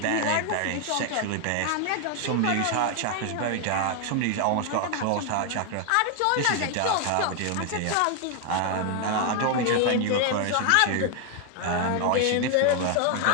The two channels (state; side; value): different; both; correlation 0.00